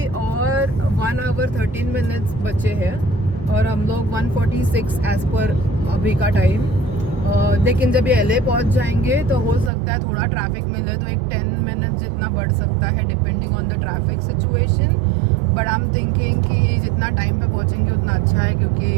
और 1 hour 13 minutes बचे हैं और हम लोग 1:46 एज पर अभी का टाइम। लेकिन जब ये LA पहुँच जाएंगे तो हो सकता है थोड़ा ट्रैफिक मिले, तो एक 10 minutes जितना बढ़ सकता है depending on the traffic situation. But I am thinking कि जितना टाइम पे पहुँचेंगे उतना अच्छा है,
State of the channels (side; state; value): left; drops out; at 9.7 s